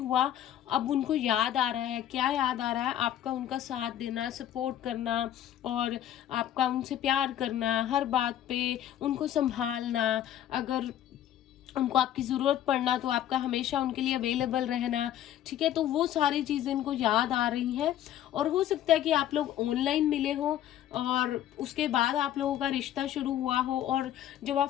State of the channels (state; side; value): quieter; right; 11.5 dB